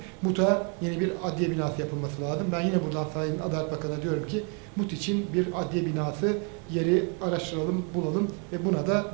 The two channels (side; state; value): left; quieter; 37.7 dB